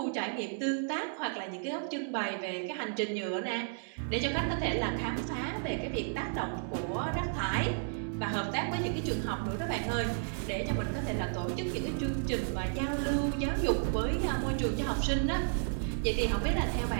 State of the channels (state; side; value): silent; left; digital silence